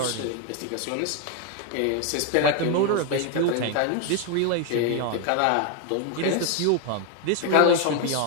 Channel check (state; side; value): different; both; correlation 0.01